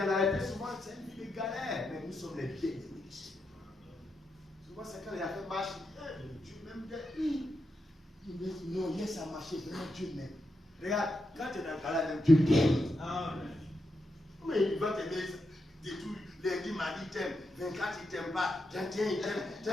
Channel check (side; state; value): both; normal; correlation 0.85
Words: la réalité, souvent, c'est une vie de galère. Mais nous sommes les bien-aimés. Souvent, c'est quand il a fait marche, Dieu m'aime bien. Non, laisse à marcher, vraiment Dieu m'aime. Regarde, quand tu es dans le galère, même Dieu t'aime. Mais il va t'aimer de tout. Lundi, mardi, il t'aime. 24, il t'aime pas. 31, il t'aime.